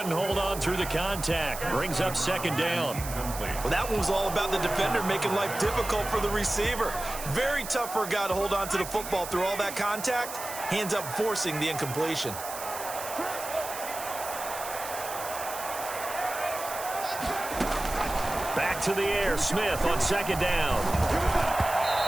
hold on through the contact. Brings up 2nd down. Well, that one was all about the defender making life difficult for the receiver. Very tough for a guy to hold on to the football through all that contact. He ends up forcing the incompletion. Back to the air. Smith on 2nd down.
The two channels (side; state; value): right; noise; hiss, 10 dB below the sound